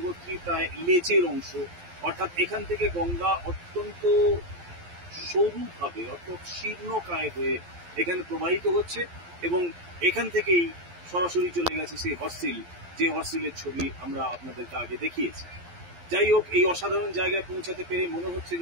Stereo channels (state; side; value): late; left; 11 ms